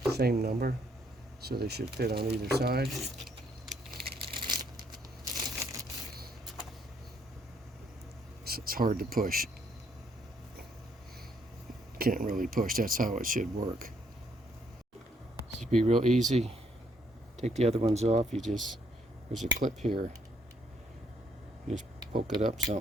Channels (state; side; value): normal; both; correlation 0.70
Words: Same number, so they should fit on either side. So it's hard to push. Can't really push, that's how it should work. This should be real easy. Take the other ones off, there's a clip here. You just poke it up